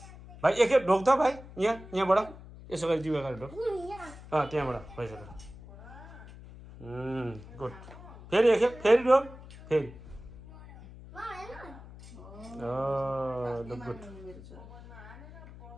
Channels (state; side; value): noise; left; hum, 17 dB below the sound